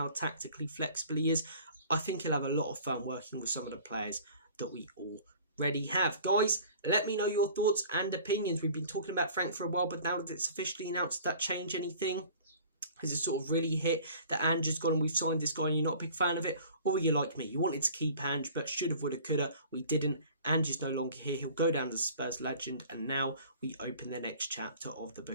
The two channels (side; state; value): both; inverted; correlation -0.47